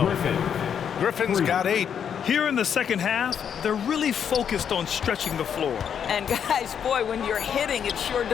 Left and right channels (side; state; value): right; quieter; 8.0 dB